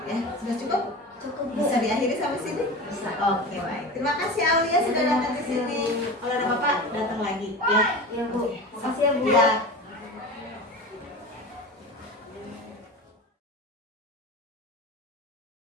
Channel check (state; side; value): normal; both; correlation 0.30